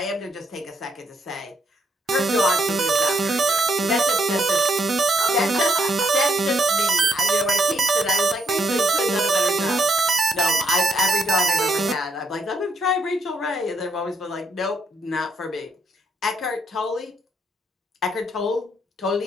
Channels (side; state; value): both; normal; correlation 0.74